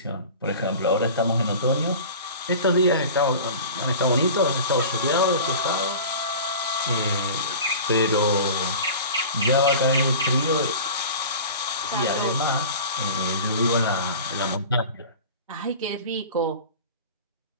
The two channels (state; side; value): inverted; both; correlation -0.38